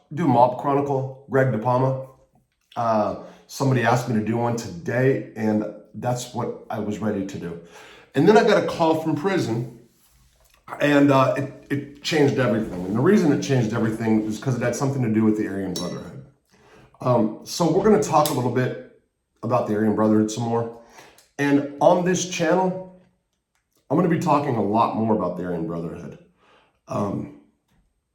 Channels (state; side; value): identical; both; correlation 1.00